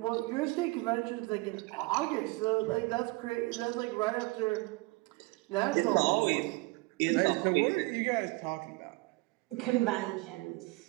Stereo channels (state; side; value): quieter; left; 23.6 dB